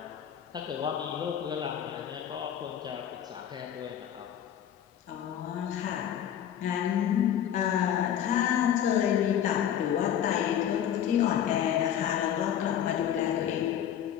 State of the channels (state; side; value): quieter; right; 9.9 dB